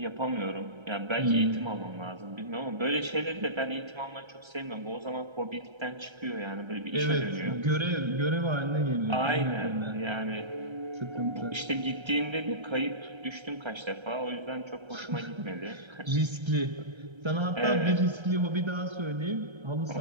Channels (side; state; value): left; late; 1.3 ms